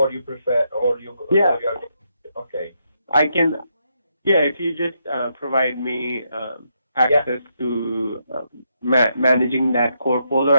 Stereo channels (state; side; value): inverted; both; correlation -0.79